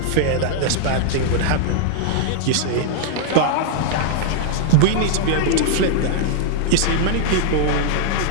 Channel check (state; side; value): different; both; correlation -0.01